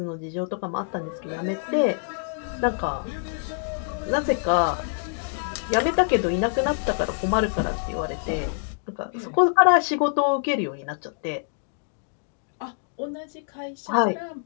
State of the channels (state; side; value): silent; right; digital silence